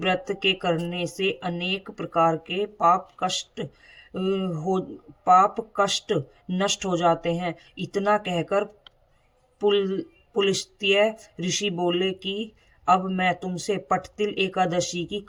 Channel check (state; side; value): identical; both; correlation 1.00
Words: के करने से अनेक प्रकार के पाप कष्ट नष्ट हो जाते हैं। इतना कहकर पुलस्त्य ऋषि बोले कि अब मैं तुमसे पट्टतिल एकादशी की